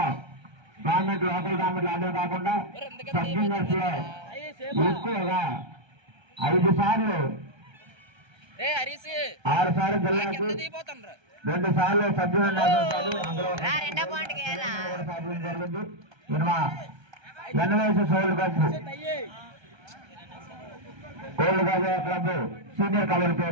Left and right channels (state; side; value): late; left; 1.3 ms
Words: గవర్నమెంట్ లోకల్ గవర్నమెంట్ ఆడడం కాకుండా సబ్ జూనియర్స్ లో ఎక్కువగా 5 సార్లు 6 సార్లు జిల్లాకు 2 సార్లు సబ్ జూనియర్ సాధించడం జరిగింది. ఎన్వైఎస్ సోల్ ఓల్డ్ గాజా క్లబ్ సీనియర్ కబడ్డీ